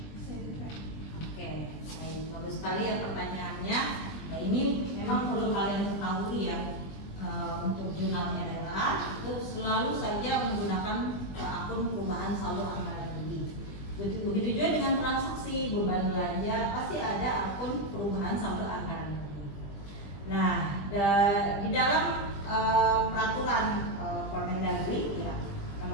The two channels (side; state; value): right; late; 20 ms